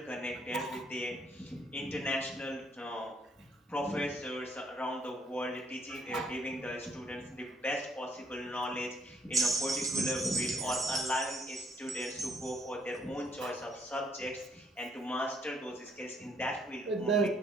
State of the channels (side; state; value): both; normal; correlation 0.68